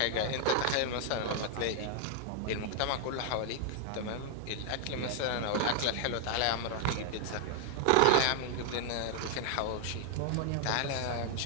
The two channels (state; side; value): different; both; correlation 0.00